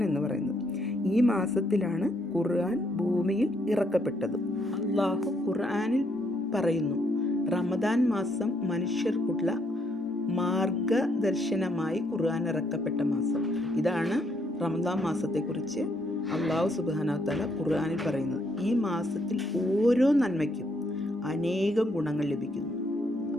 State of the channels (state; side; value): normal; both; correlation 0.73